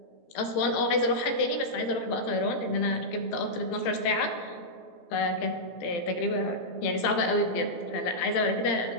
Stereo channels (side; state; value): right; late; 17 ms